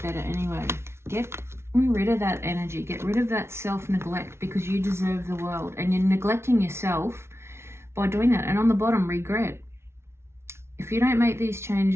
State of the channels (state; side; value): late; left; 0.12 ms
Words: better anyway. Get rid of that energy. Get rid of that self-neglect, because you deserve the world, and you're neglecting yourself by doing that. And on the bottom, regret. If you don't make these